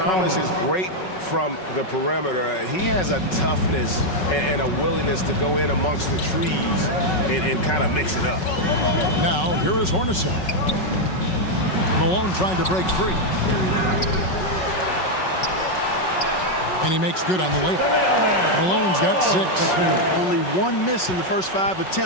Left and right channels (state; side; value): late; right; 5.4 ms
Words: is great from the perimeter, he has a toughness and a willingness to go in amongst the trees and kind of mix it up. Now, here is Hornacek. Malone trying to break free. And he makes good on the layup. Malone's got 6. Only one miss in the first 5